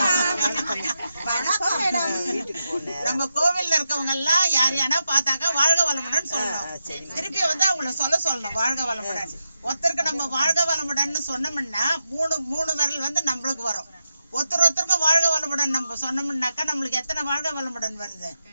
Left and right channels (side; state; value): both; inverted; correlation -0.87